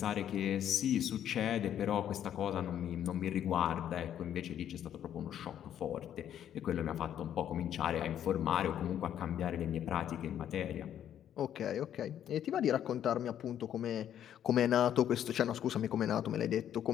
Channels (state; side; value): quieter; right; 10.3 dB